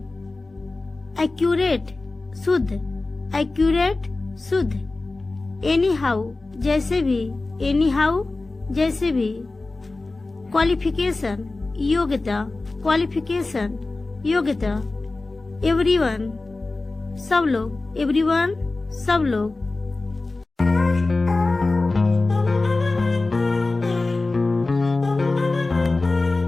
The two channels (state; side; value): quieter; right; 3.3 dB